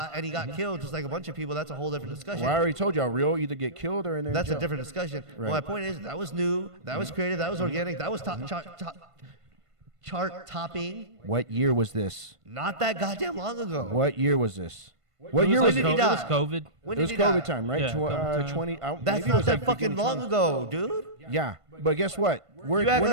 and he got killed just like a bunch of people. That's a whole different discussion. Well, I already told y'all, real either get killed or in there. That's a different discussion. Right. Well, my point is that was new. That was creative. That was organic. That was chart topping. What year was this? Not that goddamn long ago. What year was this? What year was was it? it? He died. It was COVID. When It was did he COVID die? time, right? Yeah, COVID time. 20. That's maybe it not was that like fucking beginning long 20. ago, dude. Yeah, but guess what? You act like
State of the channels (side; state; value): left; late; 1.5 ms